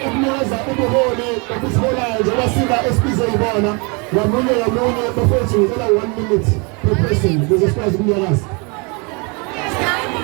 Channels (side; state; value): left; quieter; 31.5 dB